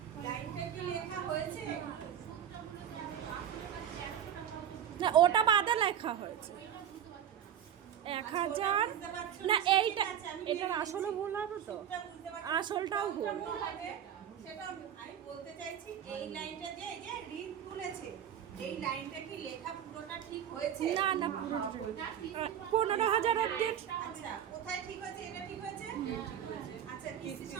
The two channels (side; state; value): left; quieter; 9.5 dB